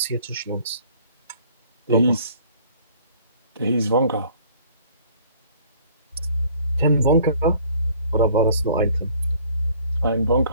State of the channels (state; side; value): inverted; both; correlation -0.55